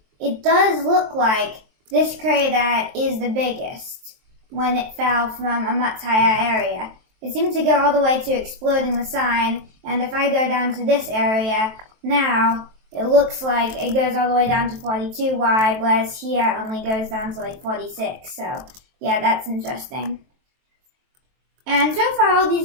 it does look like this crater is the biggest when it fell from a much higher area. It seems to go all the way to exploding the sign, and if I go down to this area now, it looks like it goes all the way down to 42 wide, whereas here only goes down to like 46. So yeah, that's interesting. And so far all these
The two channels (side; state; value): left; late; 23 ms